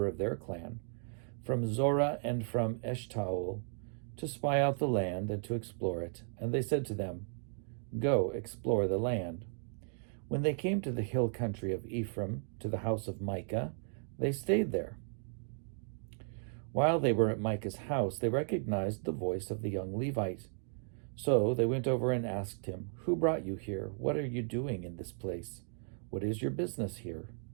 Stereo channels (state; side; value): silent; left; 54 dB below the other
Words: of their clan, from Zorah and from Eshtaol, to spy out the land and to explore it. And they said to them, "Go, explore the land." When they came to the hill country of Ephraim, to the house of Micah, they stayed there. While they were at Micah's house, they recognized the voice of the young Levite. So they went over and asked him, "Who brought you here? What are you doing in this place? What is your business here?"